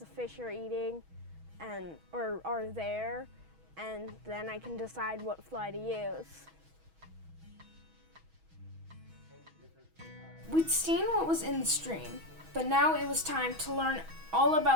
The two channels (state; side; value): late; left; 6.2 ms